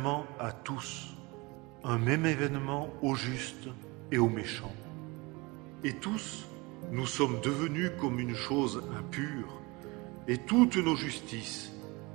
à tous, un même événement aux justes et aux méchants. Et tous, nous sommes devenus comme une chose impure, et toutes nos justices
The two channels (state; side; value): quieter; left; 25.3 dB